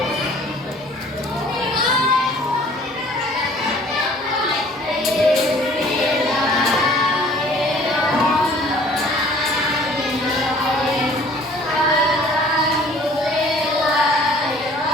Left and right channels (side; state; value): both; normal; correlation 0.53